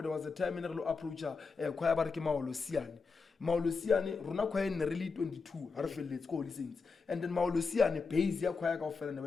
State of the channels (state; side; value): quieter; right; 4.7 dB